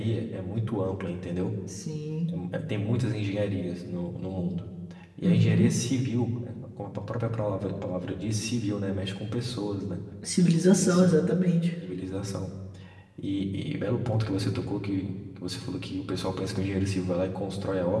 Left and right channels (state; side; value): identical; both; correlation 1.00